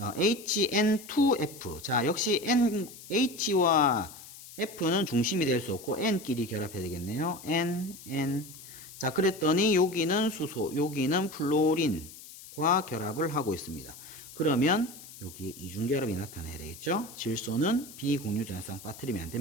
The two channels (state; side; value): noise; left; hiss, 16 dB below the sound